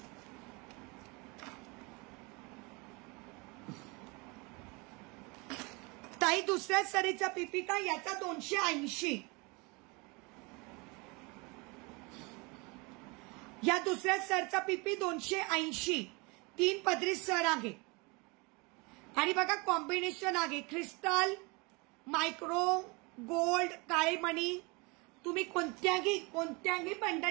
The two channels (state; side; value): quieter; left; 27.9 dB